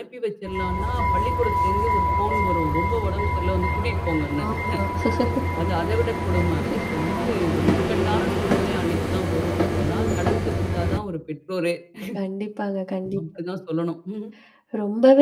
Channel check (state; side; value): identical; both; correlation 1.00